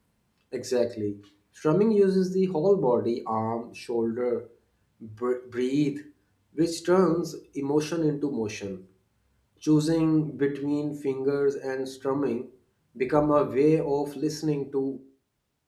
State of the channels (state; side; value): identical; both; correlation 1.00